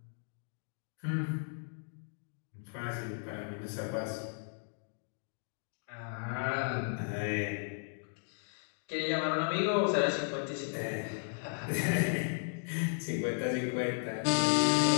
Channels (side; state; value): right; silent; digital silence